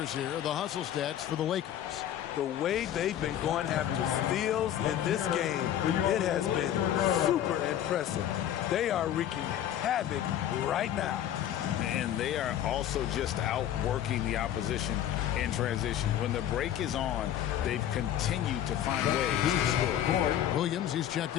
here, the hustle stats for the Lakers. The way they've been going after steals in this game, it has been super impressive. They are wreaking havoc right now. And they are also just outworking the opposition in transition. When the break is on, they've continued to find ways to score. Williams, he's checked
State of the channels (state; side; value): quieter; right; 11.1 dB